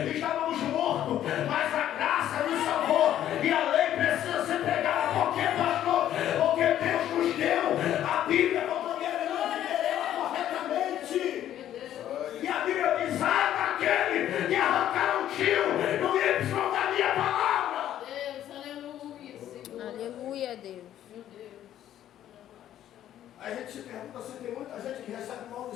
estávamos mortos, mas a graça nos salvou, e a lei precisa ser pregada. Por quê, pastor? Porque Deus nos deu a Bíblia para poder viver ela corretamente. E a Bíblia diz: ah, daquele que arrancaram o tio no Y da minha palavra. Aleluia, Deus. Meu Deus. Aí a gente se pergunta se tem muita gente que recebe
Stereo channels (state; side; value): quieter; right; 11.6 dB